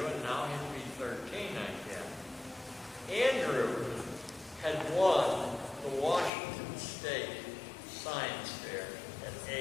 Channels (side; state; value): right; drops out; at 6.3 s